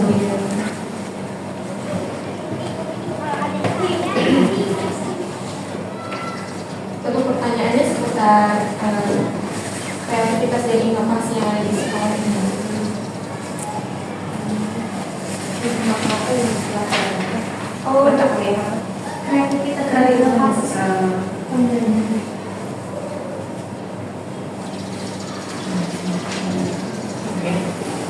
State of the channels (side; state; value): both; identical; correlation 1.00